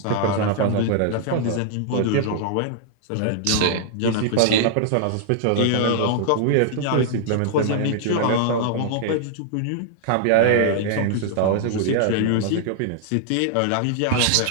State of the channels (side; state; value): both; different; correlation -0.01